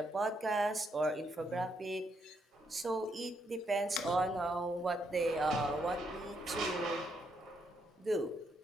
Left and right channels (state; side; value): normal; both; correlation 0.76